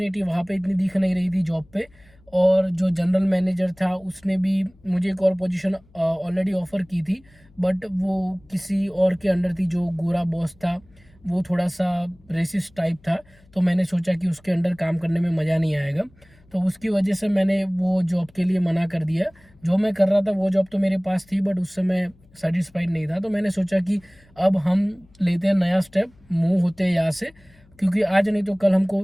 वहाँ पे इतनी दिख नहीं रही थी जॉब पे। और जो जनरल मैनेजर था उसने भी मुझे एक और पोजीशन ऑलरेडी ऑफ़र की थी, बट वो किसी और के अंडर थी। जो गोरा बॉस था वो थोड़ा सा रेसिस्ट टाइप था, तो मैंने सोचा कि उसके अंडर काम करने में मज़ा नहीं आएगा। तो उसकी वजह से मैंने वो जॉब के लिए मना कर दिया। जो मैं कर रहा था वो जॉब तो मेरे पास थी, बट उससे मैं सेटिस्फाइड नहीं था। तो मैंने सोचा कि अब हम लेते हैं नया स्टेप, मूव होते हैं यहाँ से, क्योंकि आज नहीं तो कल हमको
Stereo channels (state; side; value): noise; left; hum, 29 dB below the sound